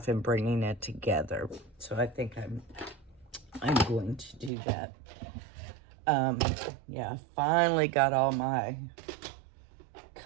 and bringing it together. So I think I'm going to do that. Yeah, I finally got all my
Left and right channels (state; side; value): drops out; left; at 4.5 s